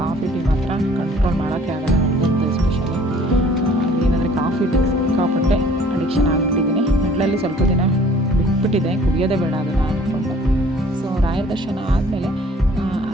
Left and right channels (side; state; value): both; normal; correlation 0.54